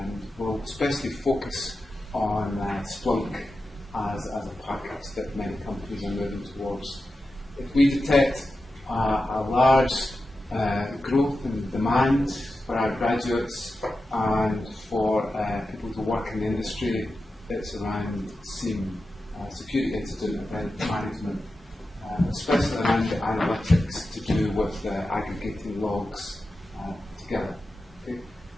we'll especially focus on Splunk as a package that many companies are moving towards. If we detect a large growth in demand for our graduates and for people to work in the industry, it's around SIEM, security incident event management, especially around the analytics to do with aggregating logs together. Okay?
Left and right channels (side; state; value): both; normal; correlation 0.91